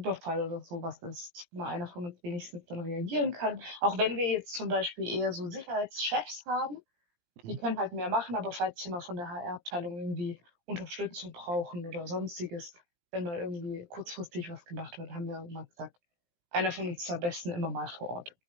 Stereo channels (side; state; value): left; late; 17 ms